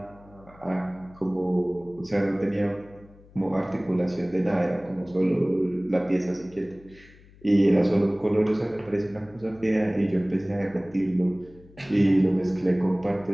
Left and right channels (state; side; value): noise; left; hum, 24 dB below the sound